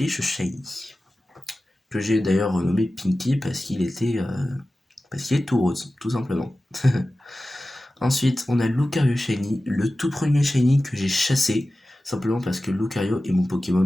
Shiny, que j'ai d'ailleurs renommé Pinky parce qu'il est tout rose, tout simplement. Ensuite, on a Lucario Shiny, le tout premier Shiny que j'ai chassé, simplement parce que Lucario est mon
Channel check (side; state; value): both; normal; correlation 0.95